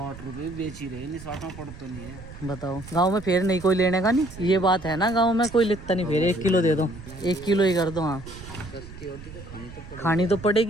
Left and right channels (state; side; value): noise; right; rumble, 15 dB below the sound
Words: रुपए बेच ही रहे, नहीं 60 पड़ तो नहीं है। बताओ गांव में फिर नहीं कोई लेने का, नहीं ये बात है ना, गांव में कोई लिखता नहीं फिर 1 किलो दे दो, 1 किलो ही कर दो। हाँ सस्ती होती तो खानी तो